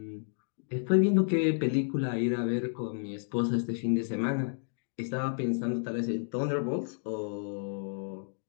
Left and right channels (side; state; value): right; silent; digital silence